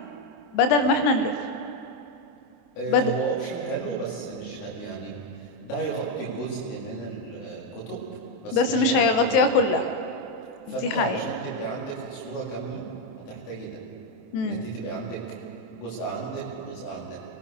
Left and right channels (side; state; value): right; late; 23 ms